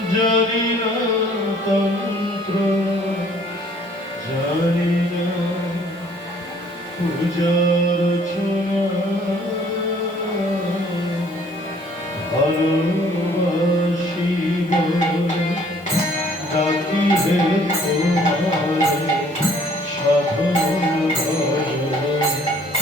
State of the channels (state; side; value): normal; both; correlation 0.58